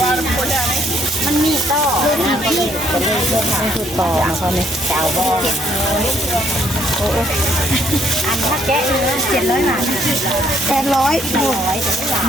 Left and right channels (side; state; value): both; normal; correlation 0.68